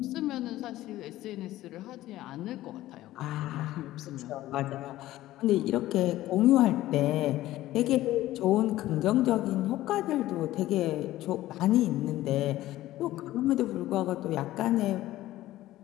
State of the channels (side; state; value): right; quieter; 15.4 dB